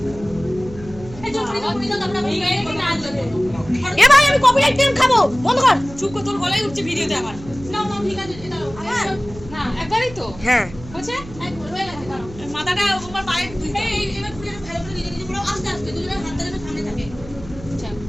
এই চুপ করে দাও, আমরা ভিডিও এডিট না আসবে। এ ভাই, আমি কপিরাইট ক্লেম খাবো, বন্ধ কর। চুপ কর, তোর গলায় উঠছে ভিডিওতে আমার। না না ঠিক আছে, এটা না একবারই তো হ্যাঁ, হচ্ছে একবার হয়ে গেছে। দাঁড়াও, মাথাটা আমার পায়ে এই এবার পুরো ভালো করে নিজে নিজে পুরো আস্তে আস্তে দুজনের হাত ধরে সামনে থাকে। আচ্ছা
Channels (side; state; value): right; noise; hum, 16 dB below the sound